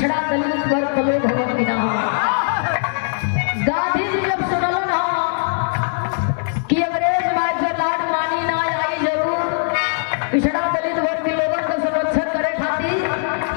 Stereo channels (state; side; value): silent; right; 66 dB below the other